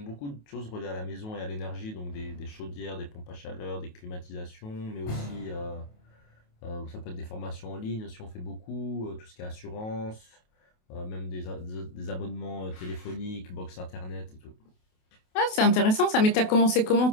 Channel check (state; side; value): late; right; 28 ms